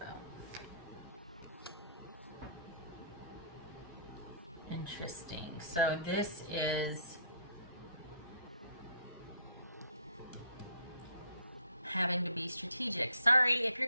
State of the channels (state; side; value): inverted; both; correlation -0.62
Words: Interesting. So this is having to be strategic. Sorry, if